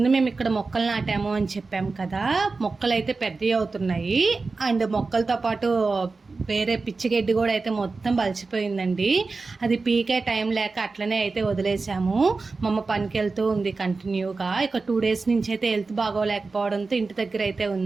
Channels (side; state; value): left; quieter; 4.0 dB